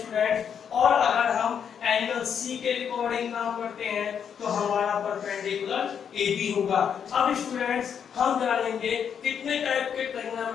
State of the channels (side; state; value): right; quieter; 7.8 dB